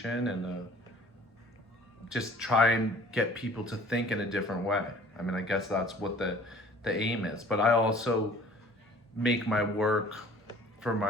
and just try and get people to think in a different way. I mean, I guess that's what the aim is. But I also make my work for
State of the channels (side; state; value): both; normal; correlation 0.50